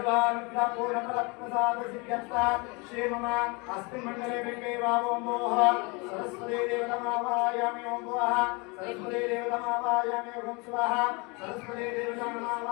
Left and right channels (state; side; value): quieter; right; 29.1 dB